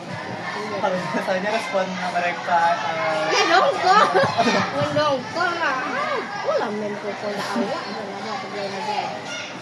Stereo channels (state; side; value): identical; both; correlation 1.00